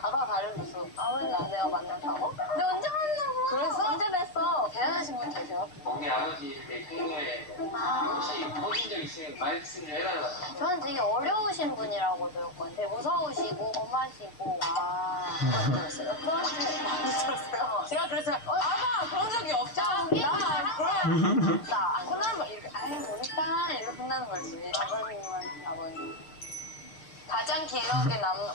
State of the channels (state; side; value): late; right; 6.5 ms